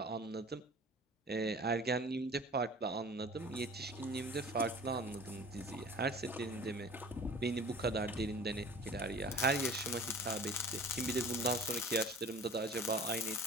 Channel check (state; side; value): normal; both; correlation 0.44